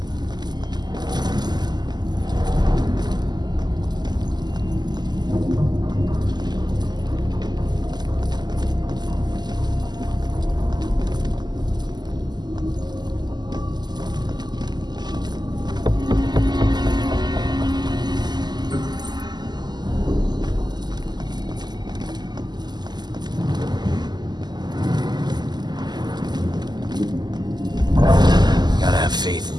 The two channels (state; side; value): late; left; 0.21 ms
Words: Gotta have faith in